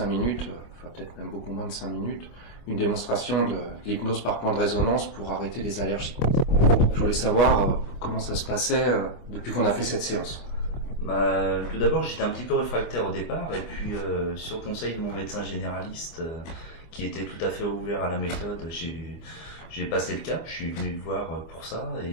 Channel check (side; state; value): right; late; 25 ms